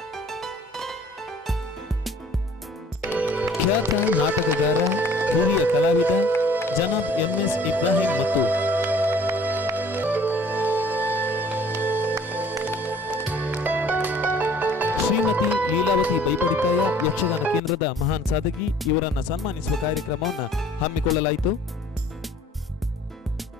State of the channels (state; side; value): normal; both; correlation 0.53